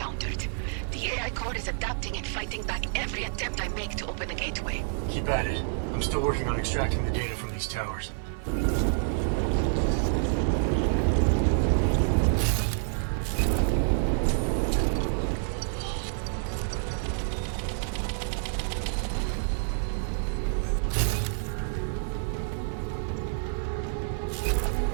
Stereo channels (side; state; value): left; silent; digital silence